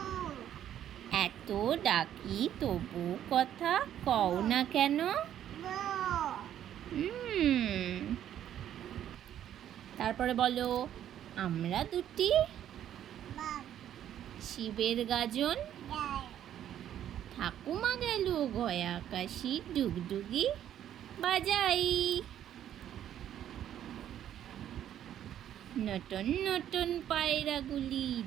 এত ডাকি তবু কথা কও না কেন? তারপরে বলো, আমরা দুটি শিবের গাজন, ঠাকুমা গেল গয়া কাশি, ডুগডুগি বাজাই। নটন নটন পায়রাগুলি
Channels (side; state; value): left; quieter; 10.8 dB